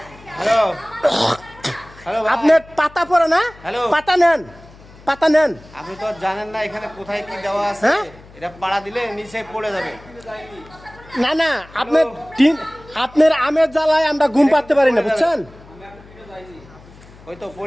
হ্যালো হ্যালো আপনার পাতা পড়ে না, হ্যালো। পাতা নেন। আপনি তো জানেন না এখানে কোথায় কি দেওয়া আছে। হ্যাঁ? এটা পাড়া দিলে নিচে পড়ে যাবে। না আপনার আমের জ্বালায় আমরা ঘুম পাড়তে পারি না বুঝছেন। ওই তো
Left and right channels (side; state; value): left; noise; hum, 22 dB below the sound